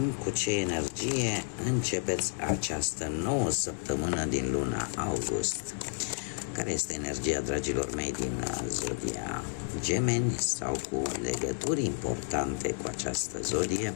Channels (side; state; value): right; silent; 57 dB below the other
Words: cu ce energie începeți această nouă săptămână din luna august. Care este energia, dragilor mei, din Zodia Gemeni sau cu legături importante cu această zodie